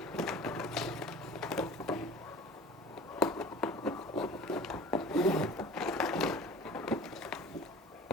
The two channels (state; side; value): normal; both; correlation 0.42